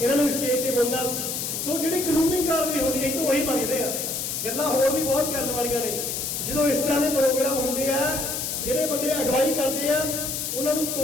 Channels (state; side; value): noise; left; hiss, 3 dB below the sound